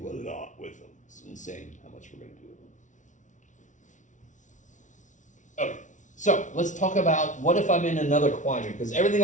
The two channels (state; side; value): late; right; 0.37 ms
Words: a lot with them. It's insane how much we're going to do with them. Okay. So let's talk about what if I'm in another quadrant, because everything